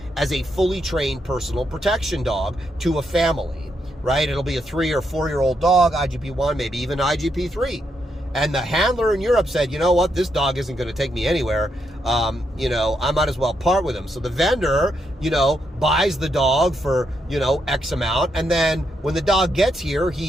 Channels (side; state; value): both; normal; correlation 0.80